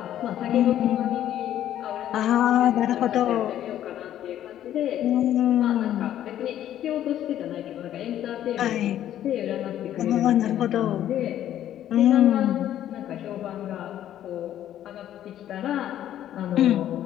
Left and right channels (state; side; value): quieter; right; 11.6 dB